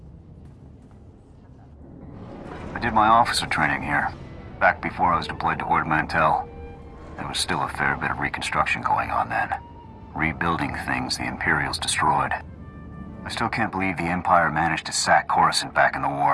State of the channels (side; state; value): both; identical; correlation 1.00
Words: I did my officer training here, back before I was deployed to Ord Mantell. There was still a fair bit of reconstruction going on then. Rebuilding things the Imperials destroyed. I still can't believe the Empire managed to sack Coruscant back in the